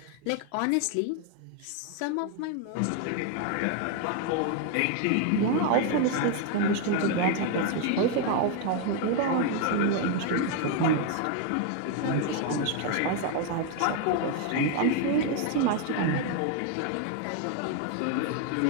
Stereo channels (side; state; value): both; different; correlation 0.01